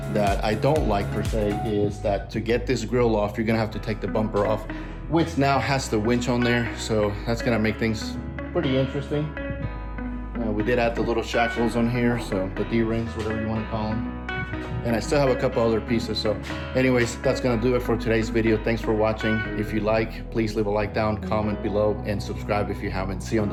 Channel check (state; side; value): identical; both; correlation 1.00